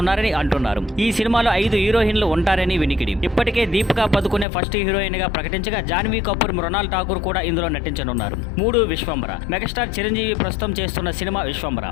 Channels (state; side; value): drops out; right; at 4.5 s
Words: అంటున్నారు. ఈ సినిమాలో 5 హీరోయిన్లు ఉంటారని వినికిడి. ఇప్పటికే దీపికా పదుకునే ఫస్ట్ హీరోయిన్ గా ప్రకటించగా జాన్వీ కపూర్, మృణాల్ ఠాకూర్ కూడా ఇందులో నటించనున్నారు. 3 విశ్వంబర. మెగాస్టార్ చిరంజీవి ప్రస్తుతం చేస్తున్న సినిమా విశ్వంబర.